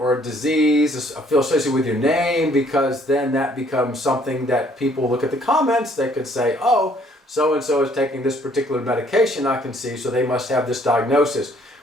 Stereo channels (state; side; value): normal; both; correlation 0.62